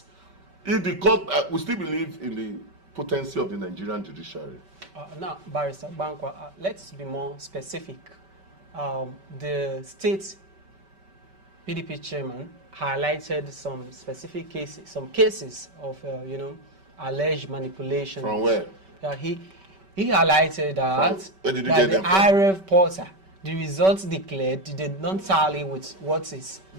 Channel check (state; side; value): late; left; 5.2 ms